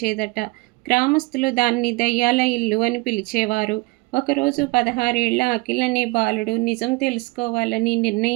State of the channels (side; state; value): left; quieter; 24.8 dB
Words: గ్రామస్తులు దాన్ని దయ్యాల ఇల్లు అని పిలిచేవారు. ఒకరోజు 16 ఏళ్ల అఖిల్ అనే బాలుడు నిజం తెలుసుకోవాలని